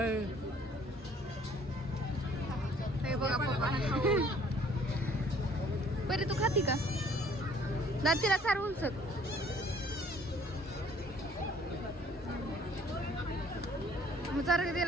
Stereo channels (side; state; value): both; normal; correlation 0.58